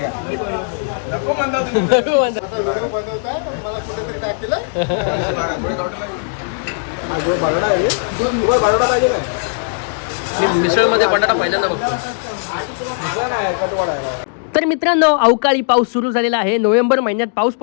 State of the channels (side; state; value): right; silent; digital silence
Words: मिसळ मध्ये बटाटा पहिल्यांदा बघतो. तर मित्रांनो, अवकाळी पाऊस सुरू झालेला आहे. नोव्हेंबर महिन्यात पाऊस